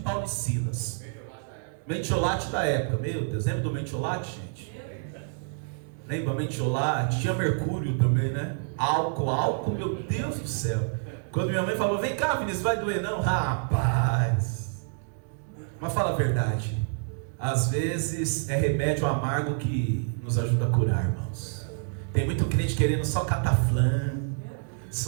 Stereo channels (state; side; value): silent; left; digital silence